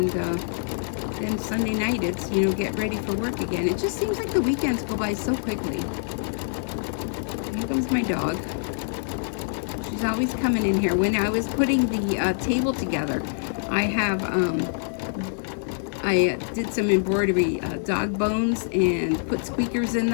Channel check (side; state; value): right; silent; 62 dB below the other